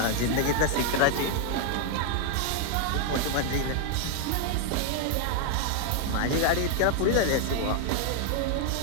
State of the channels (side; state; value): both; different; correlation 0.00